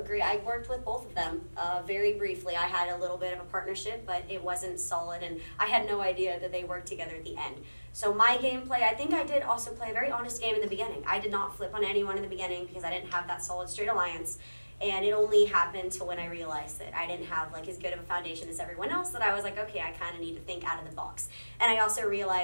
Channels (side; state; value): both; inverted; correlation -1.00